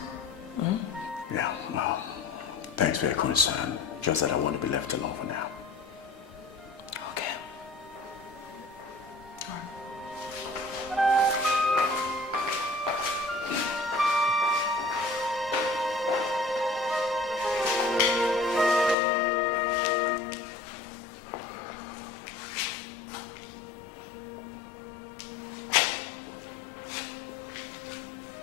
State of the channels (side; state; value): right; drops out; at 18.9 s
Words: Hmm? Yeah, well, thanks for your concern. Just that I want to be left alone for now. Okay.